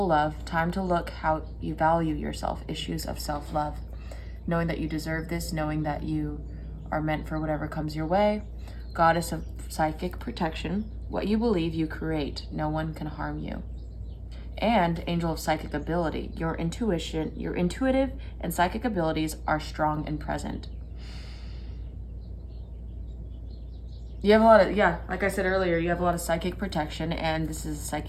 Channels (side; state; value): both; identical; correlation 1.00